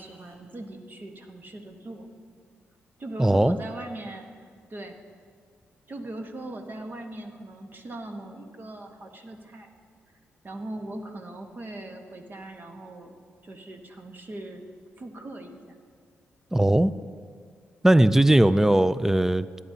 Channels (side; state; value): both; normal; correlation 0.98